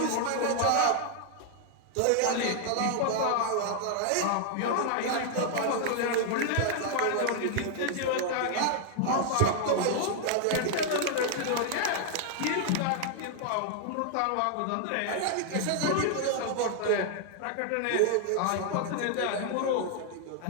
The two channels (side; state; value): both; different; correlation 0.00